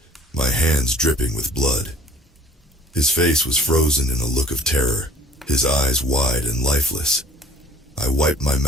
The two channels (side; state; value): both; normal; correlation 0.50